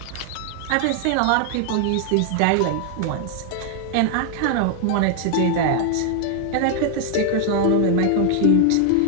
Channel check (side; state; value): both; different; correlation 0.00